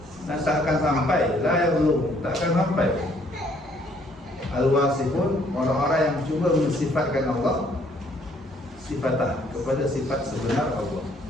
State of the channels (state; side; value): normal; both; correlation 0.65